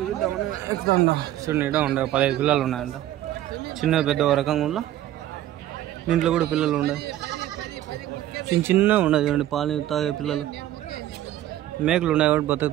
ఎక్కుతా. చూడండి, ఇడా ఉండే 15 పిల్లలు ఉన్నాయంట. చిన్న పెద్ద రకంగా ఉండ దీంట్లో కూడా పిల్లలు ఉన్నాయి. చిన్న ఉన్నాయి చూడండి, పాలు తాగే పిల్లలు. మేకలు ఉన్నాయి కాబట్టి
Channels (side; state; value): left; quieter; 13.3 dB